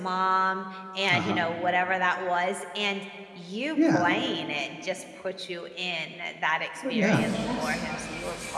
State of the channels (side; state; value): both; identical; correlation 1.00